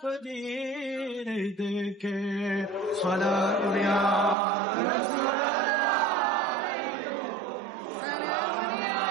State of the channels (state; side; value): drops out; left; at 4.4 s